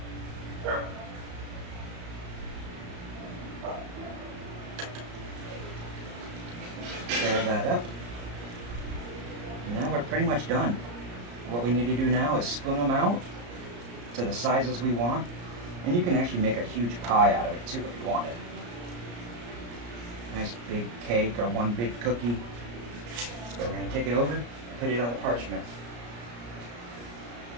Stir that up. And now we're pretty much done. What we need to do now is spoon them out to the sizes we want. And you can actually make a huge pie out of it too if you want it. Nice big cake or one big cookie. So we're going to take it over and put it on the parchment.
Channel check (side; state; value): left; late; 34 ms